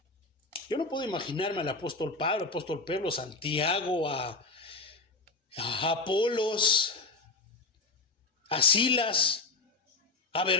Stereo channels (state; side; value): quieter; right; 3.6 dB